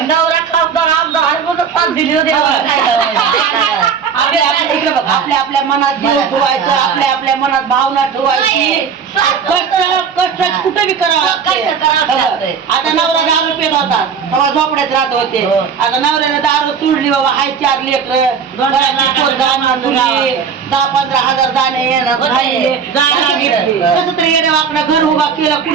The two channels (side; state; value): left; quieter; 6.5 dB